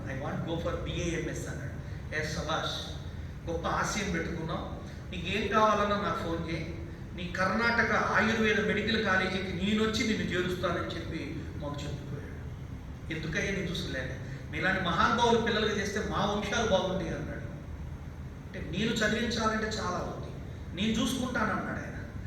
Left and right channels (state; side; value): identical; both; correlation 1.00